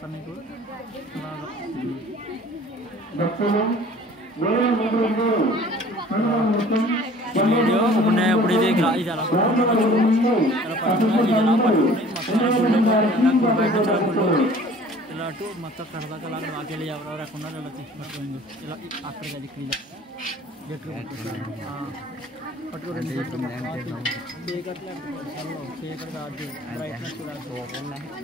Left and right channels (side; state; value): both; normal; correlation 0.49